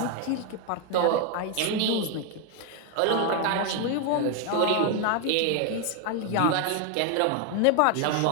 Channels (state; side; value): different; both; correlation 0.01